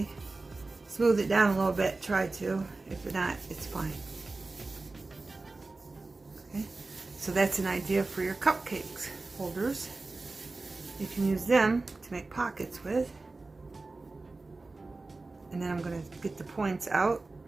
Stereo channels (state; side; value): quieter; left; 3.4 dB